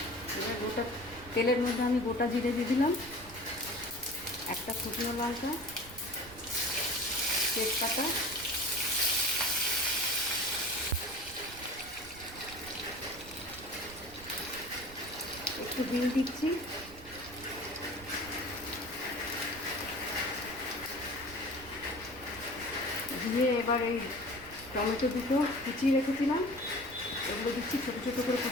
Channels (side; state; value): right; noise; rumble, 18 dB below the sound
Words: এবার গোটা তেলের মধ্যে আমি গোটা জিরে দিয়ে দিলাম, একটা শুকনো লঙ্কা, তেজপাতা, একটু বিন দিচ্ছি, দিয়ে এবার এই টমেটো দুটো কুচিয়ে রেখেছিলাম ওগুলো দিচ্ছি, ছোটো ছোটো করে